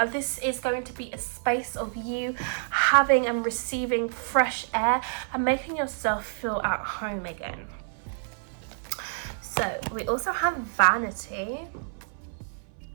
This is going to be a space of you having and receiving fresh air and making yourself feel at home again. So we also have vanity,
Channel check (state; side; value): silent; left; 57 dB below the other